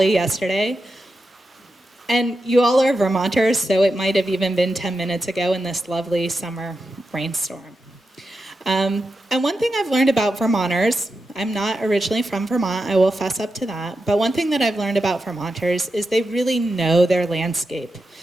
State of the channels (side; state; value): both; normal; correlation 0.89